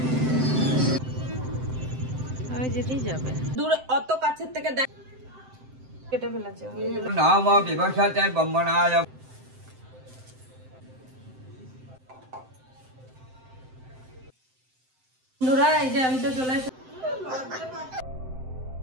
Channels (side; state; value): left; late; 7.7 ms